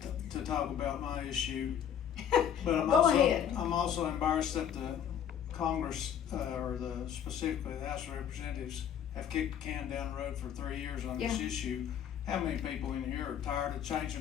to talk about my issue, but I'm also embarrassed that the Congress, specifically the House of Representatives, have kicked the can down the road for 3 years on this issue. How many people in here are tired of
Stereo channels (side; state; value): right; quieter; 9.0 dB